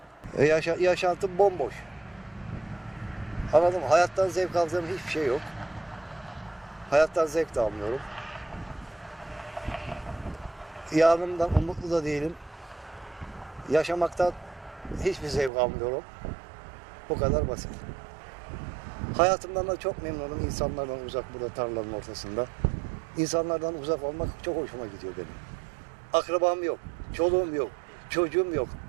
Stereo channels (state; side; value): drops out; left; at 15.5 s